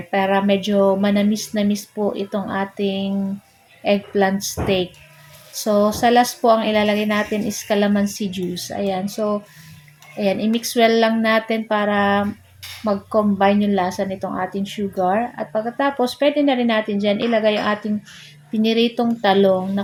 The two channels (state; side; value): identical; both; correlation 1.00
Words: para medyo manamis-namis po itong ating eggplant steak. So, sa last po ang ilalagay natin is calamansi juice. Ayan, so, ayan, i-mix well lang natin para mag-combine yung lasa nitong ating sugar. At pagkatapos, pwede na rin natin dyan ilagay yung ating piniritong talong.